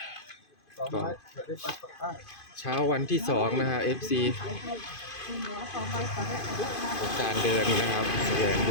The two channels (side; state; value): right; late; 2.5 ms